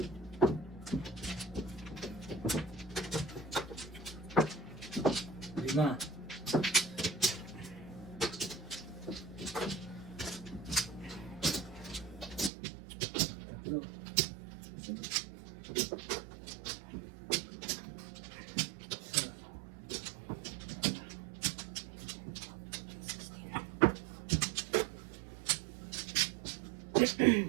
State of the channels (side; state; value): left; drops out; at 12.5 s